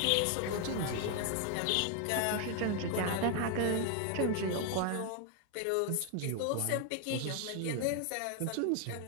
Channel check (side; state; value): both; different; correlation 0.00